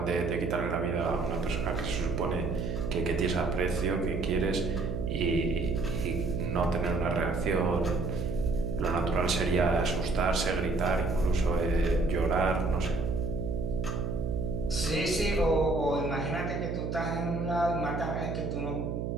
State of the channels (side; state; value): right; noise; hum, 2 dB below the sound